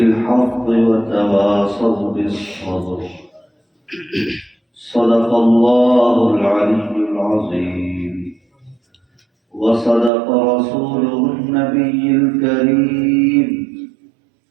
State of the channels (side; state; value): left; drops out; at 10.1 s